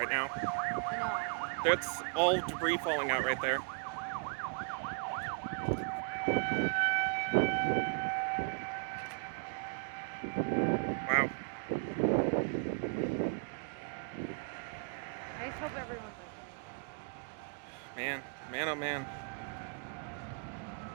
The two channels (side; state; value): left; quieter; 38.0 dB